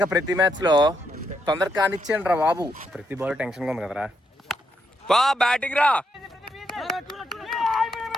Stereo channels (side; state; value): both; normal; correlation 0.79